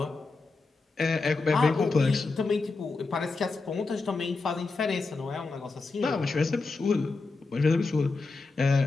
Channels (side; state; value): right; quieter; 3.9 dB